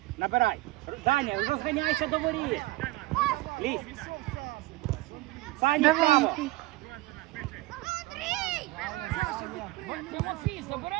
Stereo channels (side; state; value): left; quieter; 19.1 dB